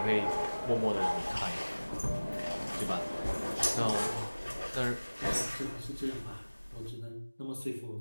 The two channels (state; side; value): inverted; both; correlation -1.00